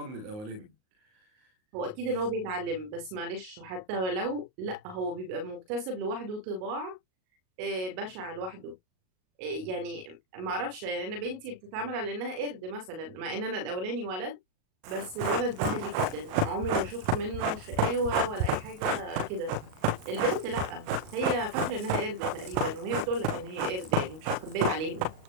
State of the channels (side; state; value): left; late; 38 ms